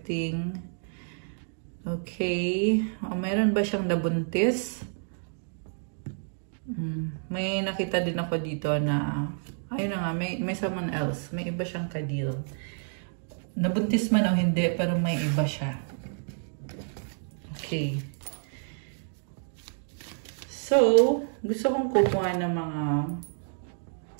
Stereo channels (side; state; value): left; silent; 58 dB below the other